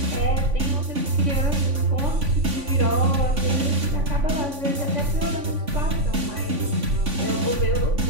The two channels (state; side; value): late; left; 3.5 ms